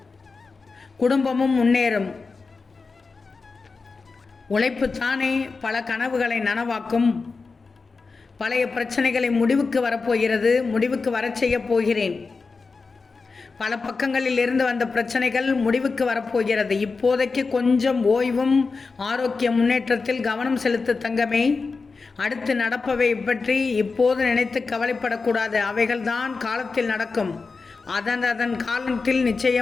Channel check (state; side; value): quieter; right; 4.4 dB